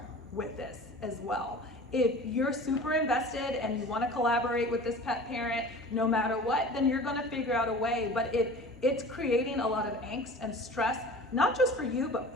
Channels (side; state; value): both; normal; correlation 0.40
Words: with this as well. If you're super invested and you want to collaborate with this pet parent, no matter what, then you're going to figure out a way. But if it's creating a lot of angst and stress, not just for you, but